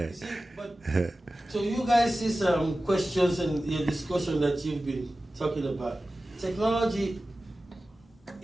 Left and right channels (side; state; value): both; normal; correlation 0.95